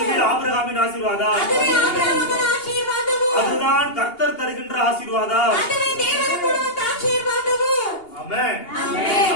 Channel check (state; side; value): late; right; 2.8 ms